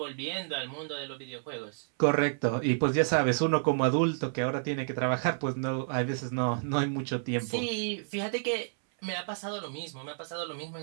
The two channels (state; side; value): silent; left; 58 dB below the other